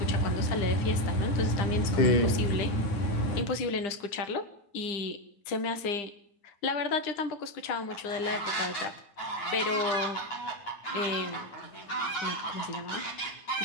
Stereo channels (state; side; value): late; right; 9.9 ms